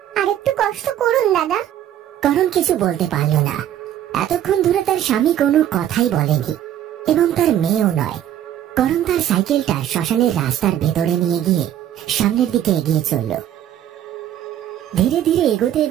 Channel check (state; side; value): quieter; left; 11.2 dB